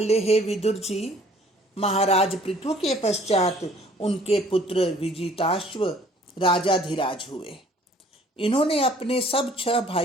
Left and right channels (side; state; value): both; normal; correlation 0.56